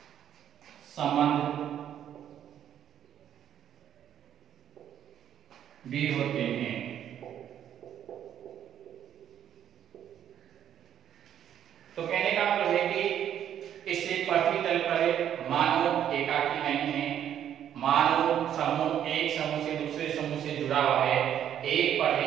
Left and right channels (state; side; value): quieter; left; 10.0 dB